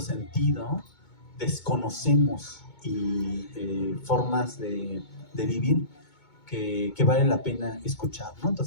desconocemos formas de vivir que vale la pena escuchar, ¿no?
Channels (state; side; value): late; right; 2.2 ms